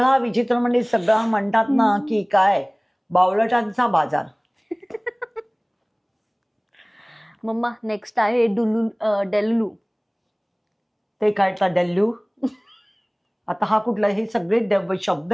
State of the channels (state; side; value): identical; both; correlation 1.00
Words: विचित्र म्हणजे सगळा म्हणतात ना की काय बावळटांचा बाजार. मम्मा नेक्स्ट आहे डेल्लू. ते काय डेल्लू? आता हा कुठला, हे सगळे शब्द